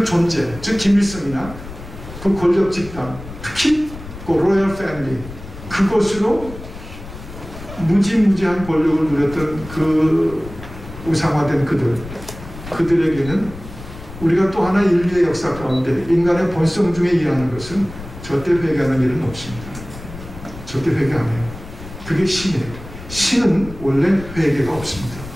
존재, 즉 김일성이나 그 권력 집단, 특히 그 로열 패밀리, 그것으로 무지무지한 권력을 누렸던 그 우상화된 그들에게는 우리가 또 하나 인류의 역사 가운데 인간의 본성 중에 일하는 것은 절대 회개하는 일은 없습니다. 절대 회개 안 해요. 그게 신이에요. 신은 원래 회개가 없습니다.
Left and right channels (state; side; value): noise; left; rumble, 14 dB below the sound